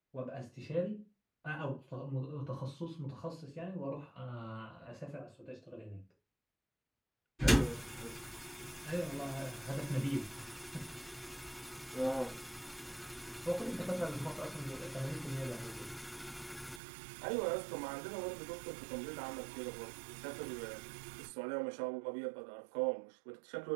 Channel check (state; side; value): drops out; left; at 16.8 s